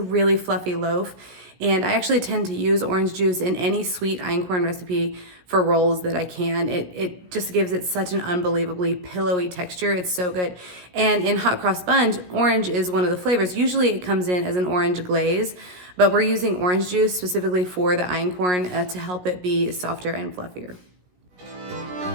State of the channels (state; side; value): late; left; 17 ms